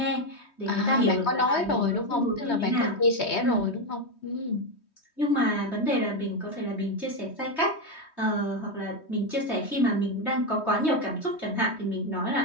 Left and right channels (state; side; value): late; right; 3.2 ms